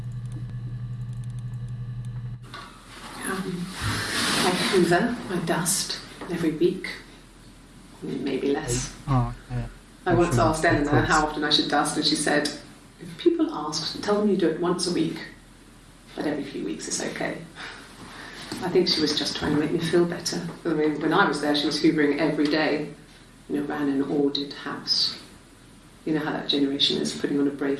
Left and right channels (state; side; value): identical; both; correlation 1.00